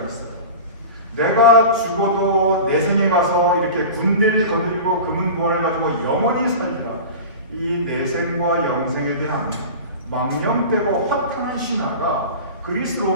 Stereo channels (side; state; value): both; inverted; correlation -0.33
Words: 있어요. 내가 죽어도 내 생에 가서 이렇게 군대를 거느리고 금은 보안을 가지고 영원히 살리라. 이 내생과 영생에 대한 망령되고 허탄한 신화가 그리스